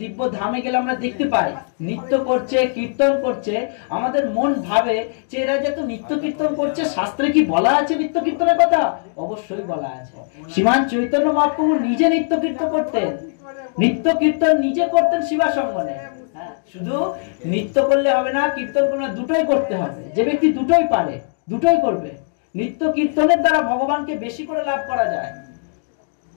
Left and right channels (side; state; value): right; silent; digital silence